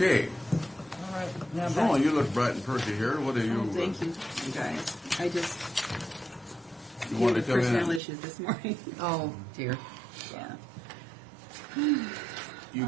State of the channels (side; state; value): left; drops out; at 8.0 s